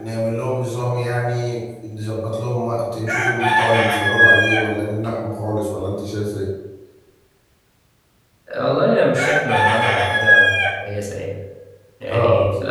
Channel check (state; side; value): identical; both; correlation 1.00